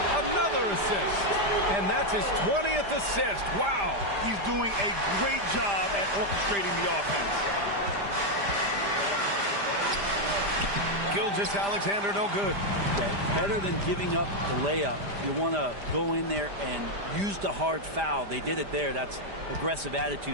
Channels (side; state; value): left; late; 5.0 ms